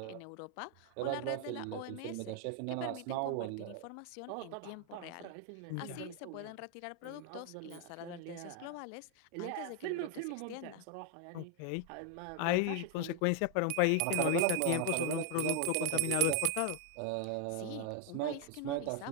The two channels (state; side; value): different; both; correlation 0.01